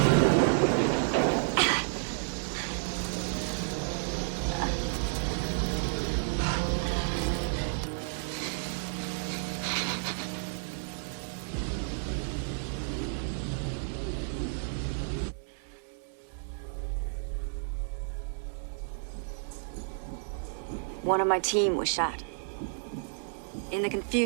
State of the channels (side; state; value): left; silent; 57 dB below the other